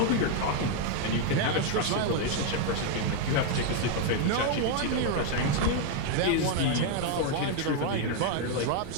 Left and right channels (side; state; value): both; different; correlation 0.00